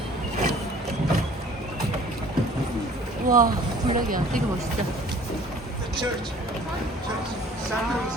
와 블랙이야. 되게 멋있다.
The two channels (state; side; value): normal; both; correlation 0.51